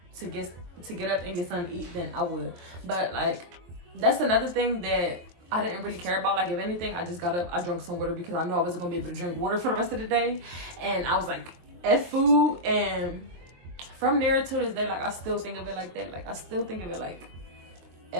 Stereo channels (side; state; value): left; late; 23 ms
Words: to get up and get something to eat, then I would. But like, that's another thing that I didn't really care about. Like, if anything, I just got up, I drank some water, because I knew I wasn't gonna be able to drink water for the rest of the day. And I was like, F food. And from there to this day, like, I still think of it like that. Like, I still think of it like